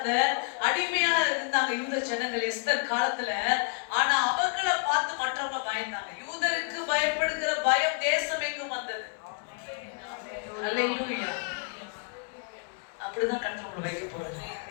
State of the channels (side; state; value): right; quieter; 36.2 dB